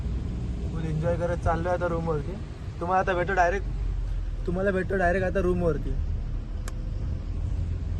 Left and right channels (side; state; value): both; identical; correlation 1.00